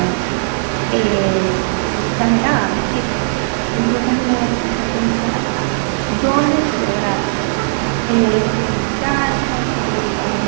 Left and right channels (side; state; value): left; silent; digital silence